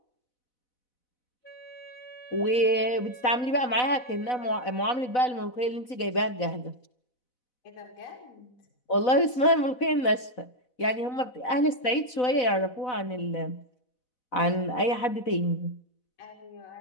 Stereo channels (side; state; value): right; late; 4.0 ms